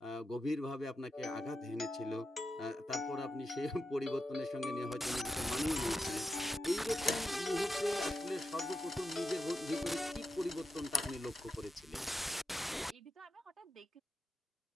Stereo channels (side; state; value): both; normal; correlation 0.87